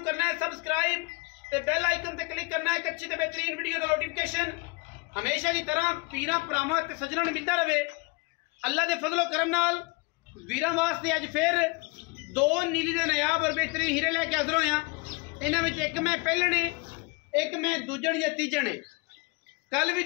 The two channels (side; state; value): right; quieter; 28.4 dB